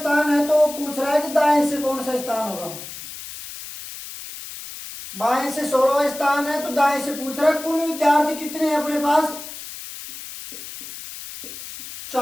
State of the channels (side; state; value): left; noise; hiss, 12 dB below the sound